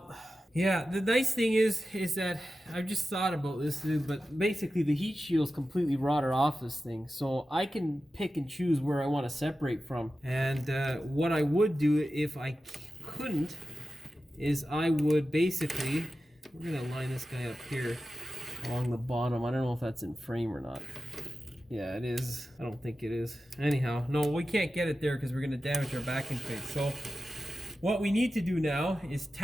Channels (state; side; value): normal; both; correlation 0.93